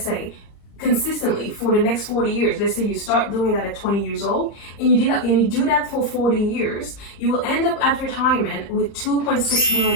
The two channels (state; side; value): late; right; 38 ms